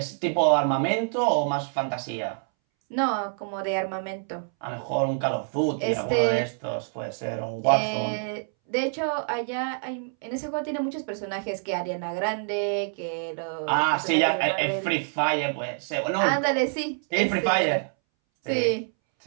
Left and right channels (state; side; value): silent; left; 61 dB below the other